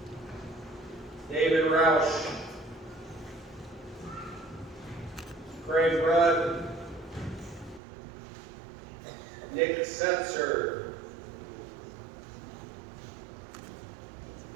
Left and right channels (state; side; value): drops out; left; at 7.8 s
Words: David Roush, Craig Rudd, Nick Setzer,